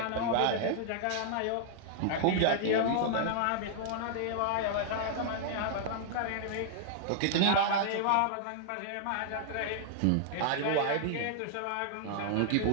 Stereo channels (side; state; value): both; different; correlation -0.01